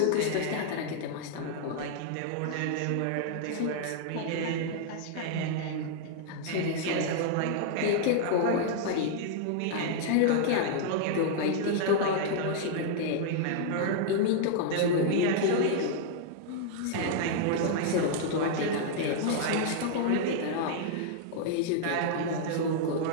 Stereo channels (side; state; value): both; different; correlation -0.01